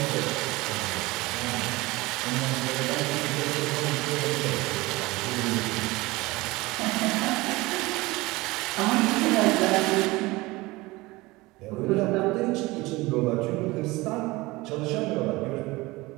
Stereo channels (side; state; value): left; quieter; 21.4 dB